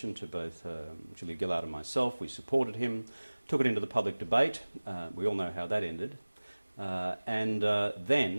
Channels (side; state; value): both; inverted; correlation -1.00